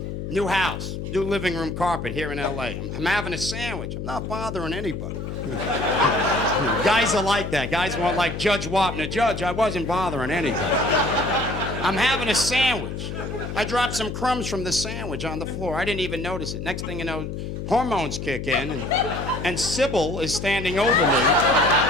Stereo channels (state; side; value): noise; left; hum, 6 dB below the sound